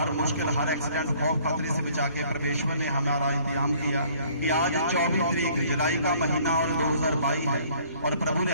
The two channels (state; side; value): inverted; both; correlation -0.58